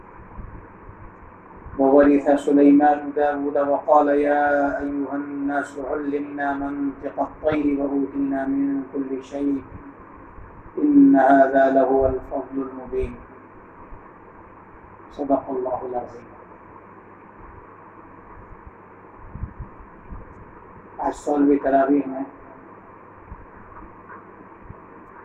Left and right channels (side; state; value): both; identical; correlation 1.00